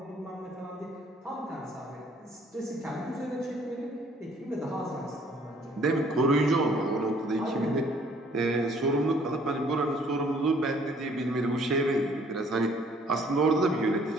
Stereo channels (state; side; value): normal; both; correlation 0.60